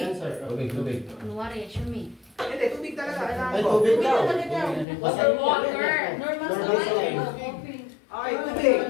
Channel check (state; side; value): drops out; right; at 4.9 s